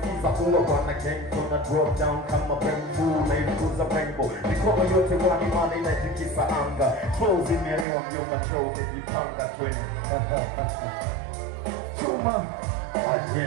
ulo wana gang tuna drop down kama bamboo na ilikuza rainbow mikono yote wani mani na itikisa anga flows imeelewa mjomba troll nijipanga tweni Chuma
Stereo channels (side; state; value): left; drops out; at 7.9 s